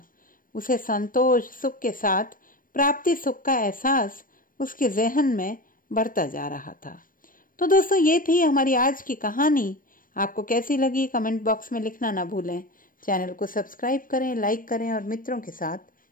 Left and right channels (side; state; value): right; late; 0.40 ms